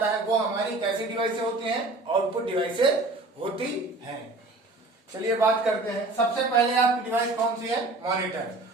है वो हमारी कैसी डिवाइसेस होती हैं? आउटपुट डिवाइसेस होती हैं। चलिए बात करते हैं। सबसे पहले आपकी डिवाइस कौन सी है? मॉनिटर।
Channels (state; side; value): quieter; left; 3.1 dB